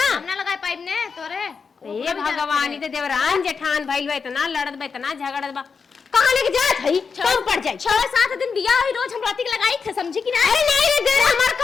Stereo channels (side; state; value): right; quieter; 5.5 dB